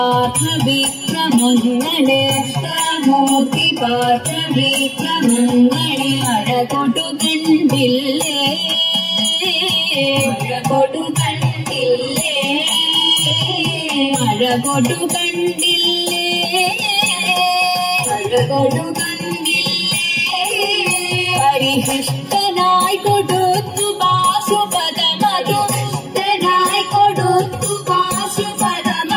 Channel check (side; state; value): both; identical; correlation 1.00